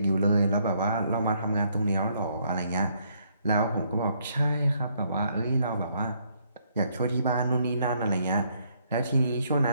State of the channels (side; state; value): both; inverted; correlation -0.70